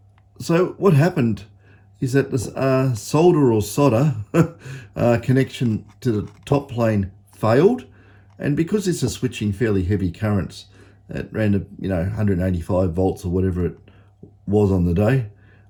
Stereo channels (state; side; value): identical; both; correlation 1.00